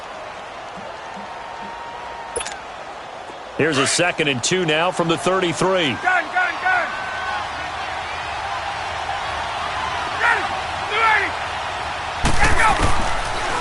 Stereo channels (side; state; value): both; identical; correlation 1.00